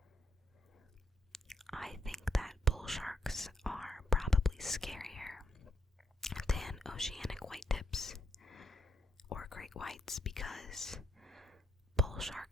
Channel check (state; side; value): normal; both; correlation 0.76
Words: I think that bull sharks are probably scarier than oceanic whitetips or great whites because bull